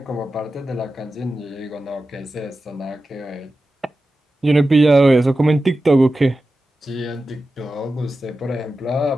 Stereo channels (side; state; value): both; normal; correlation 0.93